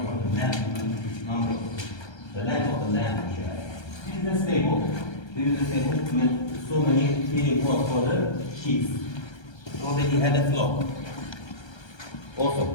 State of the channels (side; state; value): right; late; 1.3 ms